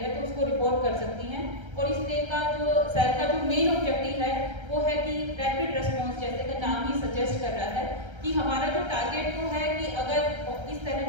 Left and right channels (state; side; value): late; left; 1.3 ms